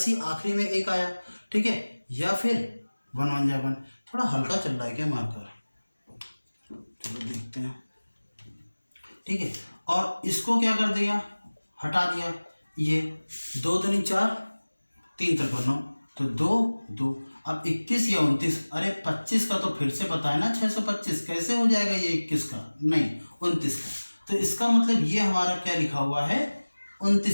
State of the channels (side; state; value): both; inverted; correlation -1.00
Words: आखिरी में एक आया, ठीक है। या फिर 1 1 जा 1। थोड़ा हल्का चल रहा है क्या मार्कर, चलो देखते हैं, ठीक है। और इसको क्या कर दिया, हटा दिया। ये 2 दूनी 4, 3 × 9, तो 2 2। अब 21 या 29, अरे 25 का तो फिर से पता है ना, 625 कैसे हो जाएगा ये 21 का, नहीं 29 का। तो इसका मतलब ये हमारा क्या लिखा हुआ है,